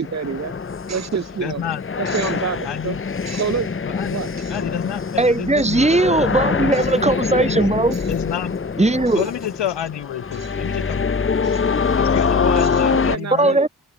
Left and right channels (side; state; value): both; normal; correlation 0.36